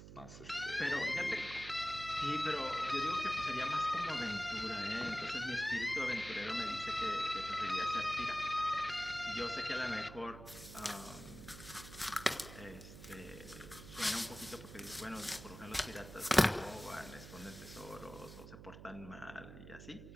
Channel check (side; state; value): right; noise; hum, 14 dB below the sound